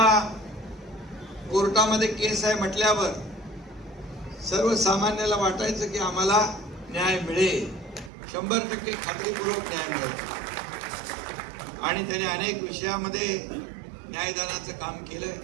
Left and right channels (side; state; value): left; drops out; at 8.1 s